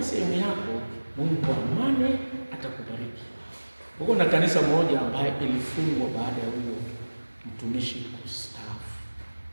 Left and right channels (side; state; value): both; inverted; correlation -1.00